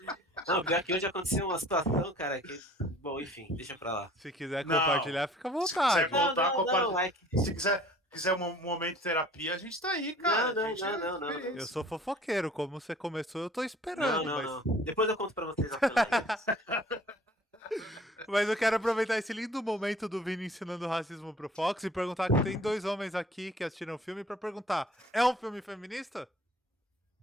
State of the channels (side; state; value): both; normal; correlation 0.51